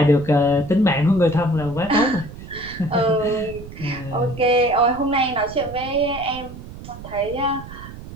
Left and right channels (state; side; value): noise; right; rumble, 14 dB below the sound